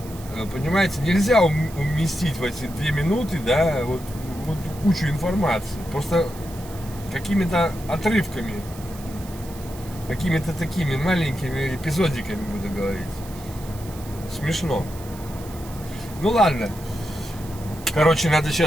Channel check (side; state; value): right; noise; hiss, 18 dB below the sound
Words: понимаете, нельзя уместить в эти 2 минуты, да, вот кучу информации. Просто какими-то отрывками, какими-то такими маленькими эпизодиками буду говорить. Смешно. Ну ладно. Короче, надо